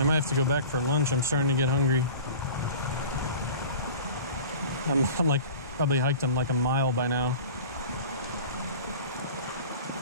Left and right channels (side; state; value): both; inverted; correlation -0.39